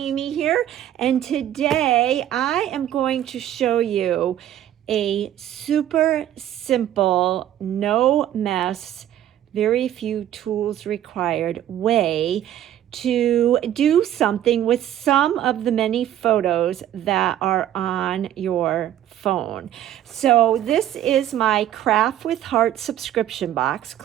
here, and today I am going to show you a super simple, no mess, very few tools required way to do something with some of the many photos that are on your phone. So this is my Craft with Heart subscription box.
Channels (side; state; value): left; quieter; 11.7 dB